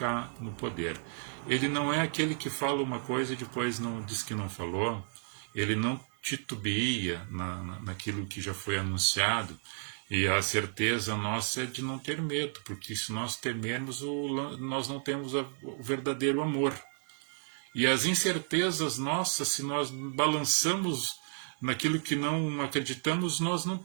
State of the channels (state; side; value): silent; left; digital silence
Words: no poder. Ele não é aquele que fala uma coisa e depois não diz que não falou, ele não titubeia naquilo que já foi anunciado. E a certeza nossa é de não ter medo, porque se nós temermos, nós não temos o verdadeiro amor. E as incertezas nossas, se nós balançamos naquilo que não acreditamos, nós não